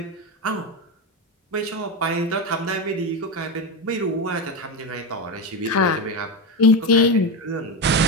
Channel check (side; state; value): both; normal; correlation 0.15